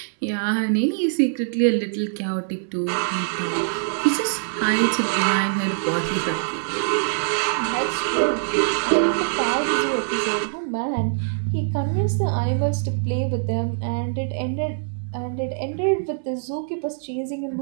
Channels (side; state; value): left; silent; 63 dB below the other